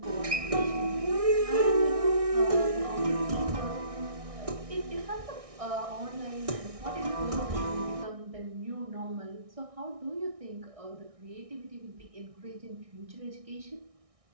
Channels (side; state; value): left; late; 1.6 ms